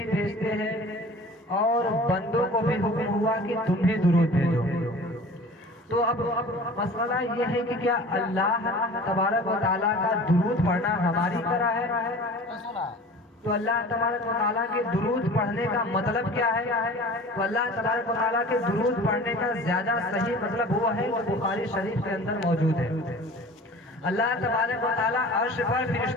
بھیجتے ہیں، اور بندوں کو بھی حکم ہوا کہ تم بھی درود بھیجو۔ تو اب مسئلہ یہ ہے کہ کیا اللہ تبارک و تعالیٰ کا درود پڑھنا ہماری طرح ہے؟ تو اللہ تبارک و تعالیٰ کے درود پڑھنے کا مطلب کیا ہے؟ تو اللہ تبارک و تعالیٰ کے درود پڑھنے کا زیادہ صحیح مطلب وہ ہے جو بخاری شریف کے اندر موجود ہے۔ اللہ تبارک و تعالیٰ عرش پر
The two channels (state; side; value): normal; both; correlation 0.42